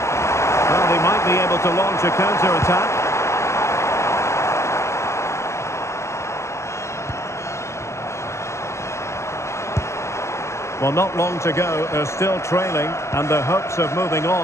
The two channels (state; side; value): late; right; 0.13 ms